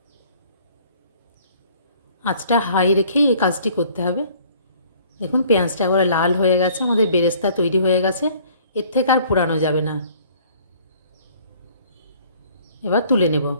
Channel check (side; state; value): both; inverted; correlation -0.56